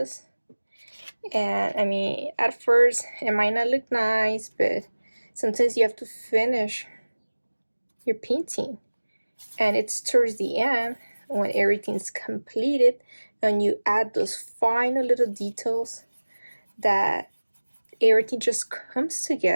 And I mean, at first it might not look nice, but sometimes you have to finish your painting, and it's towards the end when everything's completed and you add those final little details that everything just comes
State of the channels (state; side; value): inverted; both; correlation -1.00